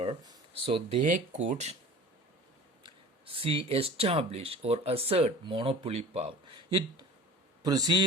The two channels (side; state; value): both; normal; correlation 0.41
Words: so they could establish or assert monopoly power. It